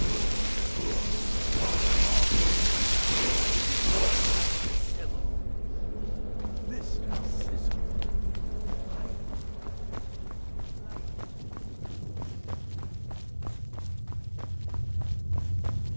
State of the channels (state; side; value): inverted; both; correlation -1.00